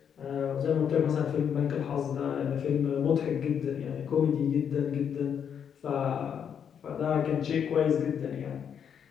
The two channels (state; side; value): quieter; right; 8.0 dB